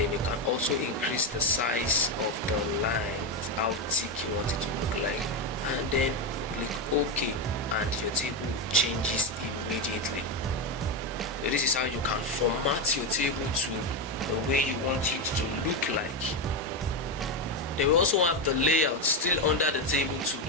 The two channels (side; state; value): both; normal; correlation 0.11